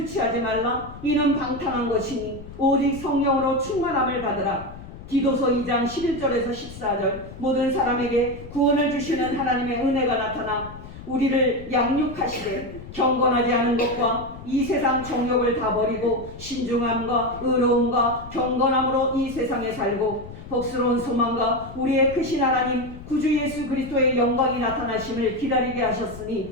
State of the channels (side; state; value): left; noise; rumble, 14 dB below the sound